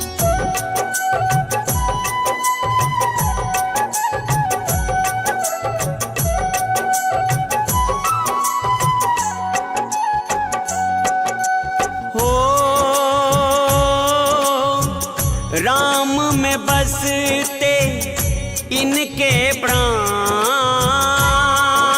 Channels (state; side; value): identical; both; correlation 1.00